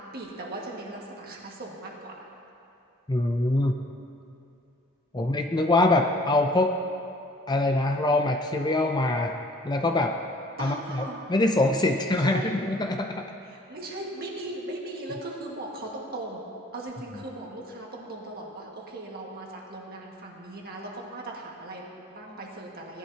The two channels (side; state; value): both; normal; correlation 0.54